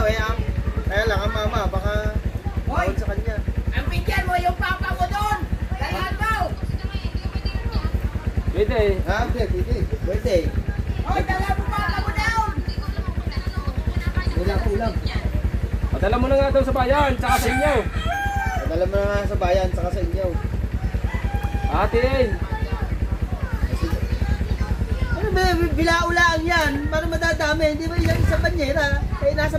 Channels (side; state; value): both; identical; correlation 1.00